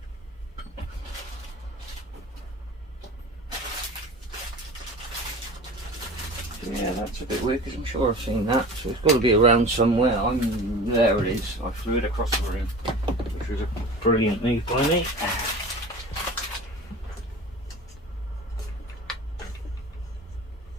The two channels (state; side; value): normal; both; correlation 0.37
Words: Yeah, that's a bit weird because I'm sure I've seen that, so it's got to be around somewhere. There it is. I flew it across the room, which was a brilliant move by me.